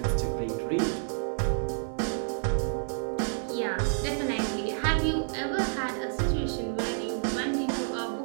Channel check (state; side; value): silent; left; digital silence